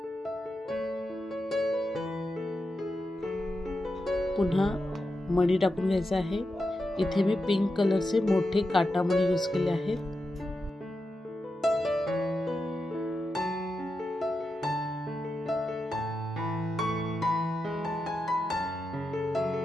पुन्हा मणी टाकून घ्यायचा आहे। इथे मी पिंक कलरचे मोठे काटा मणी यूज केले आहेत।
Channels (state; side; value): normal; both; correlation 0.88